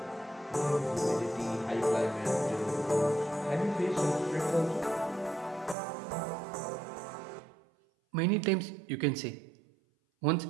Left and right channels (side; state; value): left; drops out; at 5.8 s